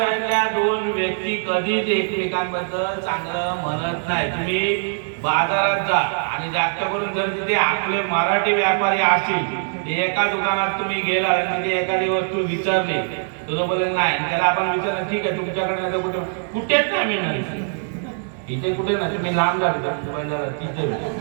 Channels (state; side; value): silent; left; 64 dB below the other